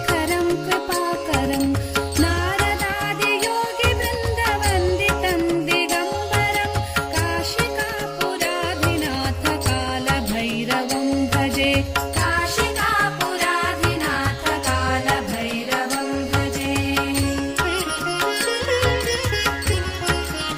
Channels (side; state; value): both; identical; correlation 1.00